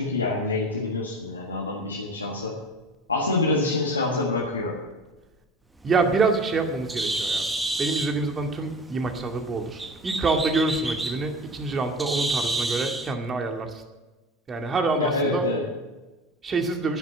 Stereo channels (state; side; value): normal; both; correlation 0.34